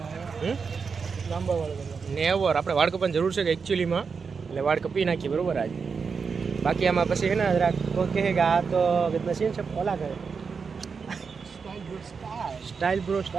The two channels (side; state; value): left; quieter; 5.5 dB